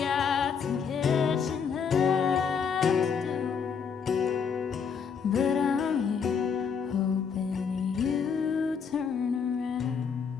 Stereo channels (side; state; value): right; quieter; 6.4 dB